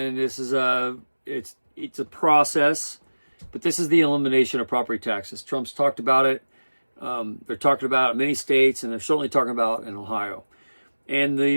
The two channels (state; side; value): inverted; both; correlation -1.00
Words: this is it's a process. But this is the elimination of property taxes. Trump's talked about it. They're talking about it in many states, and they're certainly talking about it in Ohio. And